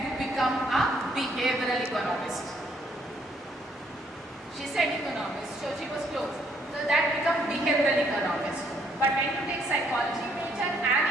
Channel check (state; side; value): normal; both; correlation 0.69